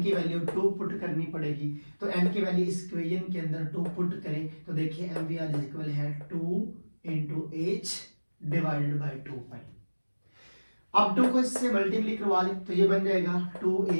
की वैल्यू 2 पुट करनी पड़ेगी। तो n की वैल्यू इस इक्वेशन के अंदर 2 पुट करें तो देखिए MVR इक्वल है 2 × h डिवाइडेड बाय 2π। अब 2 को इससे मल्टीप्लाई करवा लें तो ये बन जाएगा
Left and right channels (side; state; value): both; inverted; correlation -1.00